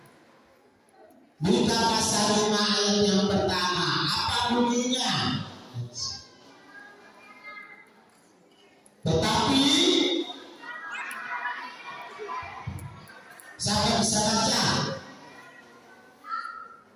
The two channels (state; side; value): identical; both; correlation 1.00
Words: Mika pasal 5 ayat yang pertama. Apa bunyinya? Tetapi siapa bisa baca?